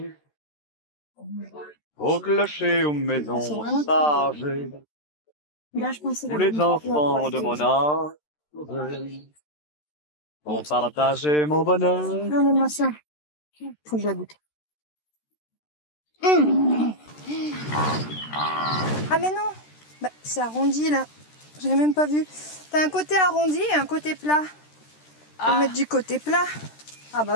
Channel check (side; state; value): right; late; 13 ms